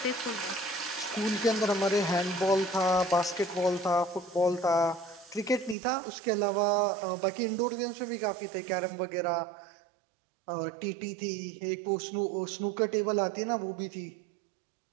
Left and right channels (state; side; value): drops out; left; at 5.8 s